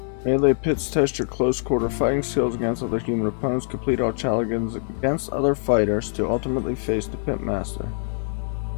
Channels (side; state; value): right; silent; 63 dB below the other